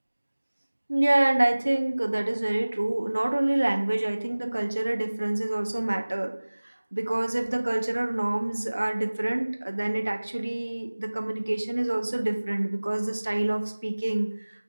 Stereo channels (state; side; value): inverted; both; correlation -1.00